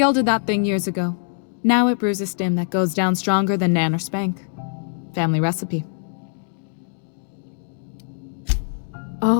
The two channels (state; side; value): silent; right; digital silence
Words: that thing years ago. Now it brews a stim that goes down stronger than Nan or Spank. Family recipe.